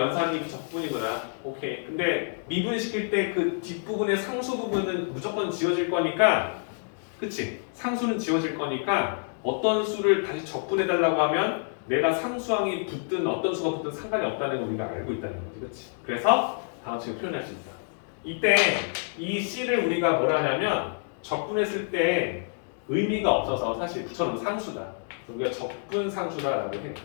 적분이구나. 오케이. 근데 미분시킬 때 그 뒷부분의 상수 부분은 무조건 지워질 거니까, 그치? 상수는 지워질 거니까 어떤 수를 다시 적분해달라고 하면 내가 상수항이 붙든 어떤 수가 붙든 상관이 없다는 걸 우리가 알고 있다는 거지, 그치? 그래서 다음 식으로 표현할 수 있다. 이때 이 C를 우리가 뭐라 하냐면 적분했을 때 의미가 없어서 사실 붙여놓은 상수다. 그래서 우리가 적분 상수다라고 해요.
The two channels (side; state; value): right; silent; digital silence